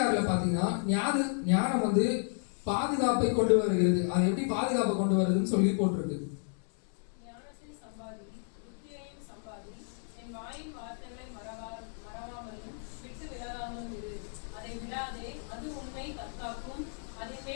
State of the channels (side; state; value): right; silent; 56 dB below the other